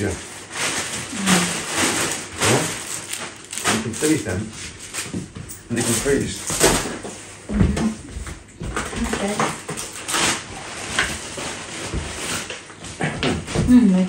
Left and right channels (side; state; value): both; identical; correlation 1.00